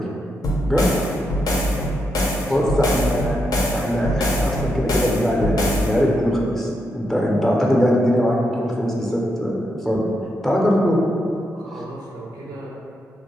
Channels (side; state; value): both; normal; correlation 0.82